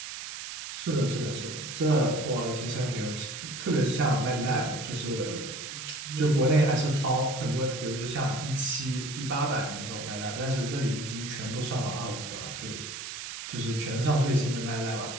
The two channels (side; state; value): right; noise; hiss, 8 dB below the sound